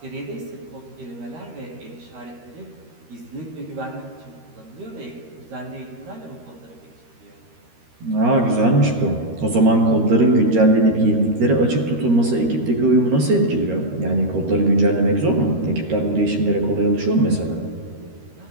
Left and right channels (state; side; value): late; left; 13 ms